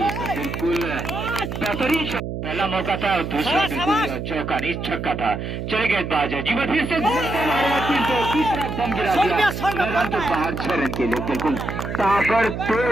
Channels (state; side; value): noise; right; hum, 5 dB below the sound